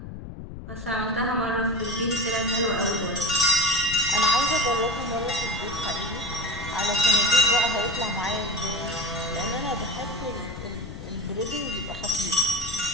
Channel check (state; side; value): noise; left; rumble, 11 dB below the sound